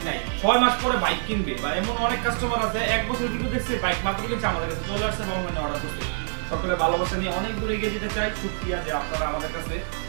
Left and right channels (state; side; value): silent; left; digital silence